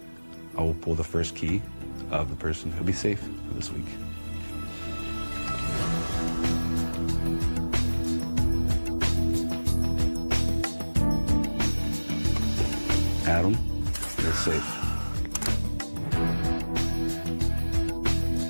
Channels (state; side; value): inverted; both; correlation -1.00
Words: I will pull the first key of the person who'll be safe for this week. Adam, you're safe.